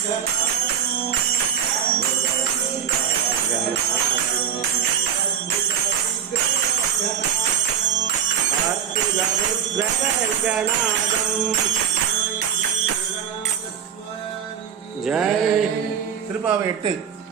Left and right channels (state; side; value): quieter; left; 8.2 dB